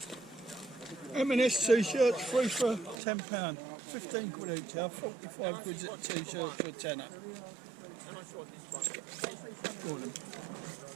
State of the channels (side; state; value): left; drops out; at 3.0 s